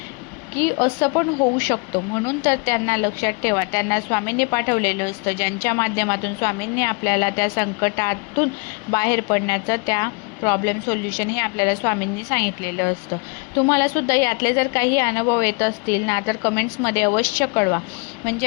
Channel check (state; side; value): quieter; right; 31.4 dB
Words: की असं पण होऊ शकतो. म्हणून तर त्यांना लक्षात ठेवा, त्यांना स्वामींनी पाठवलेलं असतं, ज्यांच्या माध्यमातून स्वामींनी आपल्याला त्या संकटातून बाहेर पडण्याचं, त्या प्रॉब्लेम सोल्युशन हे आपल्याला स्वामींनी सांगितलेलं असतं. तुम्हाला सुद्धा यातले जर काही अनुभव येत असतील ना, तर कमेंट्समध्ये अवश्य कळवा.